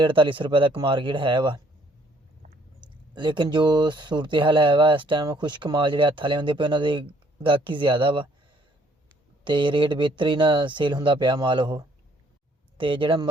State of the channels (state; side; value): normal; both; correlation 0.64